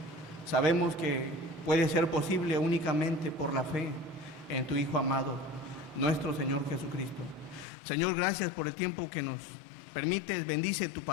sabemos que puede ser posible únicamente por la fe en tu Hijo amado, nuestro Señor Jesucristo. Señor, gracias por el tiempo que nos permites. Bendice tu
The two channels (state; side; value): drops out; right; at 7.7 s